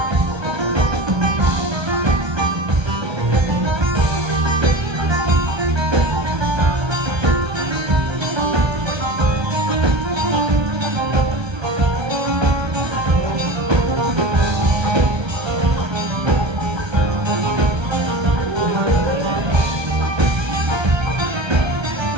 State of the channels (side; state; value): left; late; 1.3 ms